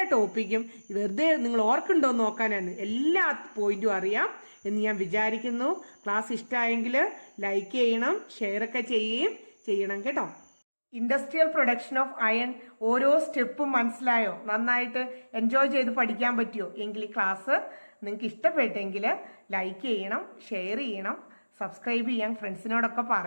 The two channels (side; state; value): both; inverted; correlation -1.00